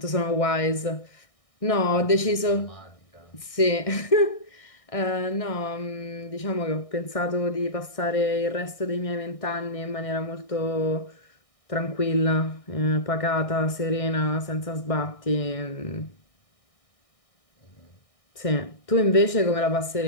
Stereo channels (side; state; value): right; late; 1.6 ms